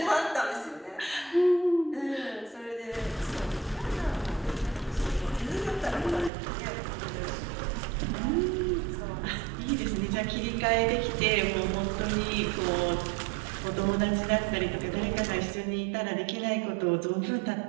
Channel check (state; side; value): drops out; left; at 6.3 s